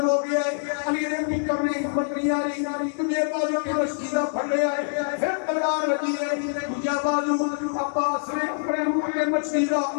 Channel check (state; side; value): silent; right; 62 dB below the other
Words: ہو گیا ہے علی نے بھی کرنے ہمت نہیں آ رہی تجھے بازو کے مشکیزہ پھڑ لیا ہے پھر تلوار لگی ہے مجھے بازو عباس نے اپنے منہ کے مشکیزہ